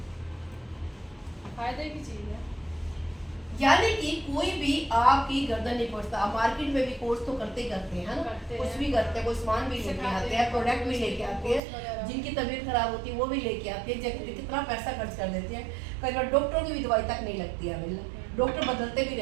फायदे की चीज़ है। यानी कि कोई भी आपकी गर्दन नहीं पड़ता। आप मार्केट में भी कोर्स तो करते हैं ना, कुछ भी करते हैं, कोई सामान भी लेके आते हैं, प्रोडक्ट भी लेके आते हैं, जिनकी तबीयत खराब होती है वो भी लेके आते हैं, जगह कितना पैसा खर्च कर देते हैं। कई बार डॉक्टरों की भी दवाई तक नहीं लगती है, डॉक्टर बदलते भी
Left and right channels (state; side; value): drops out; left; at 11.6 s